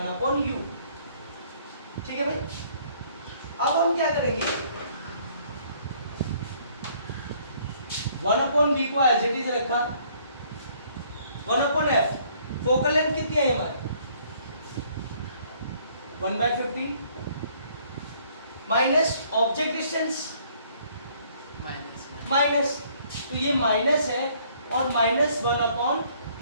ठीक है भाई, अब हम क्या करेंगे? 1/v को एज इट इज रखा, 1/f फोकल लेंथ कितनी है हमारी? 1/15 माइनस ऑब्जेक्ट डिस्टेंस माइनस, तो ये माइनस है और माइनस 1/20।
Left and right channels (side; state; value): both; inverted; correlation -0.62